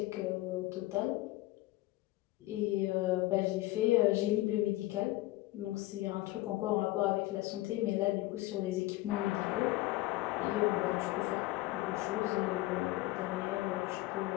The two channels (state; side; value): quieter; right; 18.4 dB